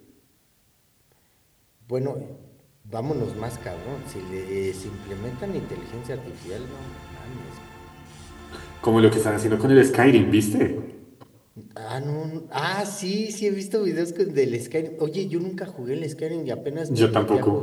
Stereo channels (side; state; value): both; identical; correlation 1.00